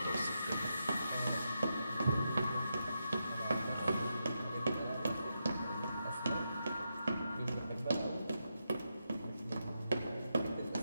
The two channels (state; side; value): inverted; both; correlation -0.85